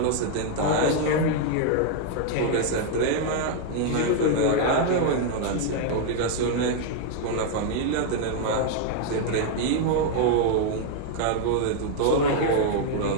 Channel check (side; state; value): both; different; correlation 0.00